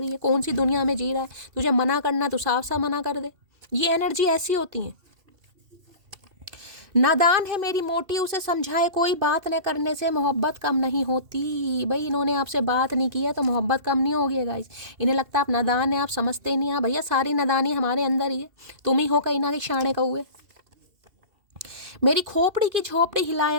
है, कौन सी दुनिया में जी रहा है, तुझे मना करना तो साफ साफ मना कर दे। ये एनर्जी ऐसी होती है। नादान है मेरी मोटी, उसे समझाए कोई, बात न करने से मोहब्बत कम नहीं होती। भाई इन्होंने आपसे बात नहीं किया तो मोहब्बत कम नहीं होगी गाइस। इन्हें लगता है आप नादान है, आप समझते नहीं हैं। भैया सारी नादानी हमारे अंदर ही है, तुम ही हो कहीं ना कहीं शाणे कौए। मेरी खोपड़ी की झोपड़ी हिलाए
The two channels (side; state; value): left; late; 2.7 ms